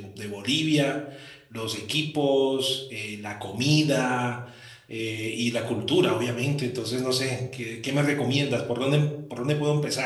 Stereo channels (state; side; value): identical; both; correlation 1.00